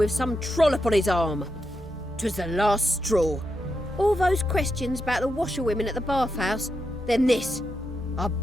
some trollop on his arm. 'Twas the last straw. All those questions about the washerwomen at the bathhouse, then this. I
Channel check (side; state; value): both; normal; correlation 0.85